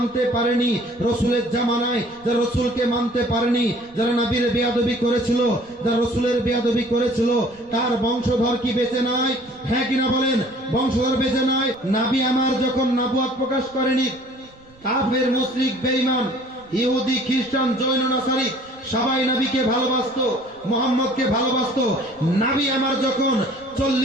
পারেনি, রাসূলের জামানায় যারা রাসূলকে মানতে পারেনি, যারা নবীর বেয়াদবি করেছিল, যারা রাসূলের বেয়াদবি করেছিল, তার বংশধর কি বেঁচে নাই? হ্যাঁ কিনা বলেন? বংশধর বেঁচে নাই। নবী আমার যখন নবুয়ত প্রকাশ করেনি, কাফের, মুশরিক, বেঈমান, ইহুদি, খ্রিস্টান, জৈন, নাসারি সবাই নবীকে ভালোবাসতো, মুহাম্মদকে ভালোবাসতো। নবী আমার যখন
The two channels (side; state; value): right; noise; rumble, 27 dB below the sound